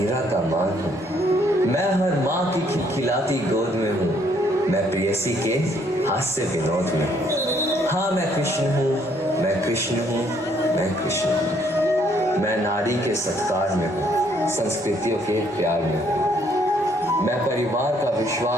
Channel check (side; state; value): both; normal; correlation 0.67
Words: का मान हूँ, मैं हर माँ की खिलखिलाती गोद में हूँ, मैं प्रेयसी के हास्य विनोद में हूँ। हाँ मैं कृष्ण हूँ, मैं कृष्ण हूँ, मैं कृष्ण हूँ। मैं नारी के सत्कार में हूँ, संस्कृतियों के प्यार में हूँ। मैं परिवार का